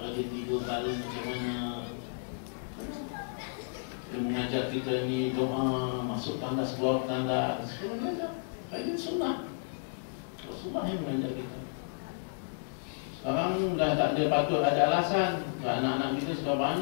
dia tidur malam macam mana. Dia mengajar kita ni doa, masuk tandas, keluar tandas. Dia mengajar. Ini sunnah. Rasulullah yang mengajar kita. Sekarang dah tak ada patut ada alasan. Anak-anak kita sudah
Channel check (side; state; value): right; silent; digital silence